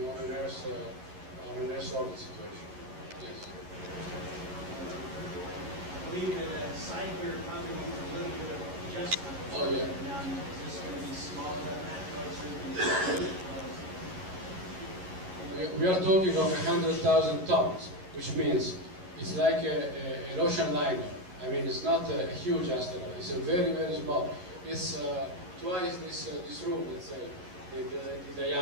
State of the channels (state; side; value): late; left; 11 ms